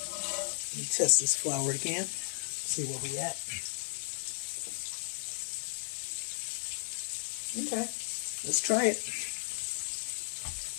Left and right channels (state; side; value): silent; right; 55 dB below the other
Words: Let me test this flour again, see where we at. Okay, let's try it.